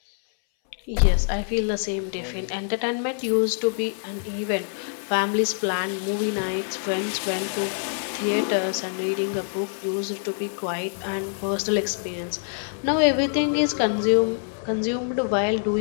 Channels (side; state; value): right; silent; 62 dB below the other